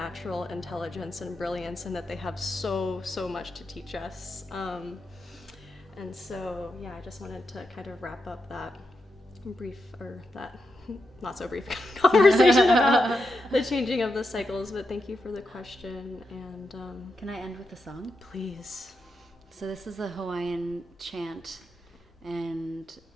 intelligence and brilliance, and that they have so much to teach us, and so I just wanted to kind of wrap up that brief, or that not so brief conversation about the changing of the cycles. But thank you for the question. And Can I end with a song? Please. So this is a Hawaiian chant, and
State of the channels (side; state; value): both; normal; correlation 0.86